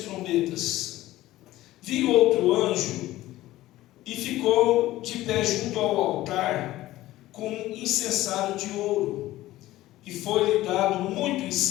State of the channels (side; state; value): right; quieter; 16.0 dB